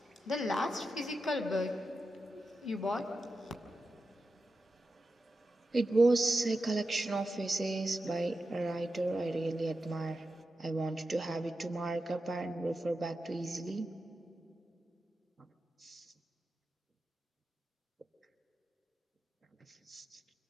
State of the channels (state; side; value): normal; both; correlation 0.90